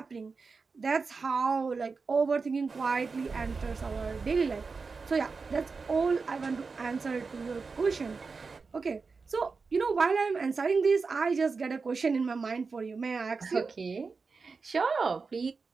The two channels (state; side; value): quieter; left; 4.6 dB